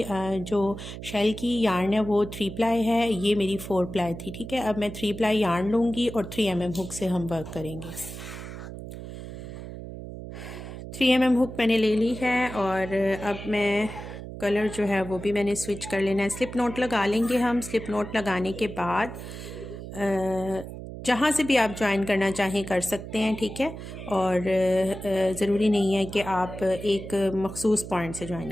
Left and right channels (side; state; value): right; noise; hum, 10 dB below the sound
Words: जो शेल की यार्न है वो 3 प्लाई है, ये मेरी 4 प्लाई थी। ठीक है, अब मैं 3 प्लाई यार्न लूँगी और 3 mm हुक से हम वर्क करेंगे। 3 mm हुक मैंने ले ली है और अब मैं कलर जो है वो भी मैंने स्विच कर लेना है। स्लिप नोट लगा लेंगे हम। स्लिप नोट लगाने के बाद जहाँ से भी आप ज्वाइन करना चाहें कर सकते हैं। ठीक है, और ज़रूरी नहीं है कि आप एक मखसूस पॉइंट से ज्वाइन